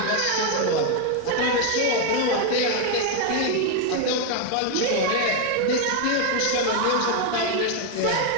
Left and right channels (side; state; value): both; different; correlation 0.01